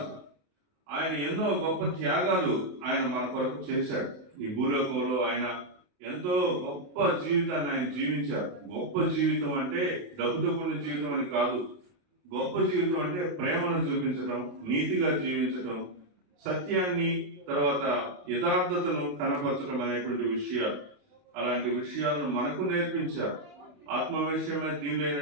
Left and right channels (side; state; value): left; late; 28 ms